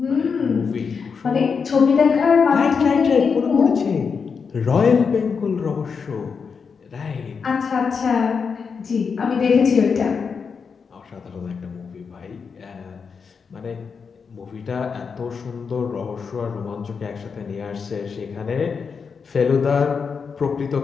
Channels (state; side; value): quieter; right; 5.7 dB